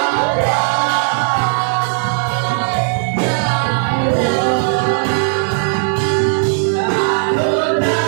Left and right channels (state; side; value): silent; left; digital silence